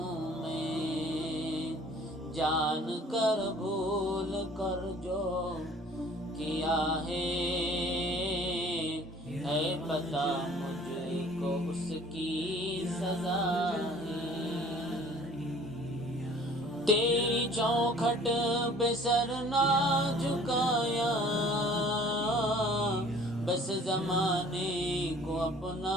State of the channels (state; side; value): normal; both; correlation 0.51